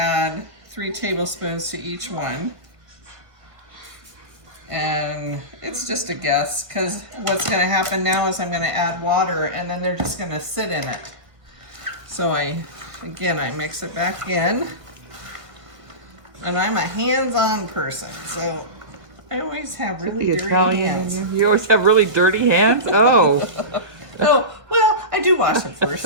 3 tablespoons to each one. And it's just a guess, because what's going to happen now is I'm going to add water, and then they're just going to sit in it. So I mix it back in. And I'm a hands-on person, so I always have really dirty hands. You always have really dirty hands? Oh. Oh, well, I do wash them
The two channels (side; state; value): left; late; 1.7 ms